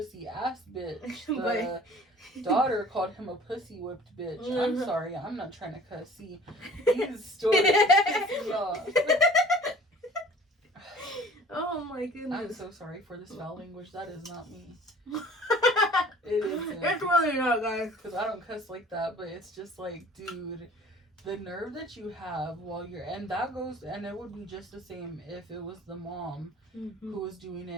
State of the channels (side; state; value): both; normal; correlation 0.47